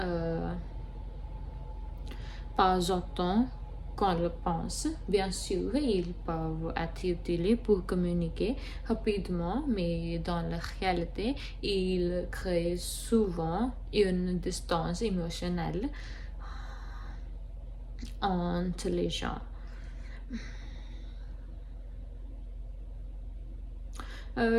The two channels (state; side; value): identical; both; correlation 1.00